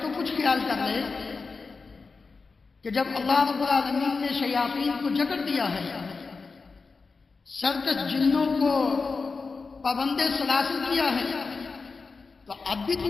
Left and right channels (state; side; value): quieter; right; 4.4 dB